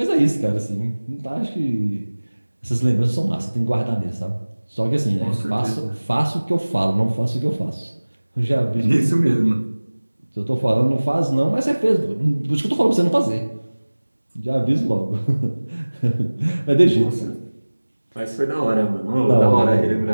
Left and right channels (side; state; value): both; inverted; correlation -1.00